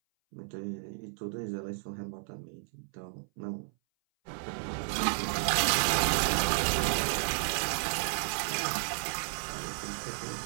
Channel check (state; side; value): silent; left; 56 dB below the other